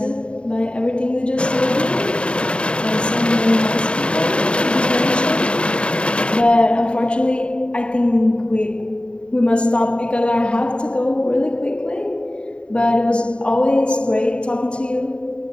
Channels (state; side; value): late; right; 0.055 ms